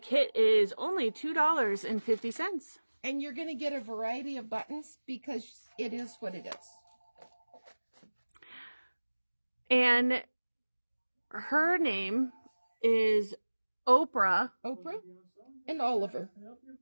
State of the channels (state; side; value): inverted; both; correlation -1.00